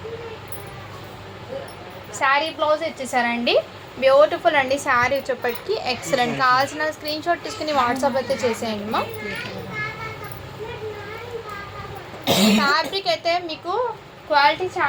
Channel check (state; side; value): identical; both; correlation 1.00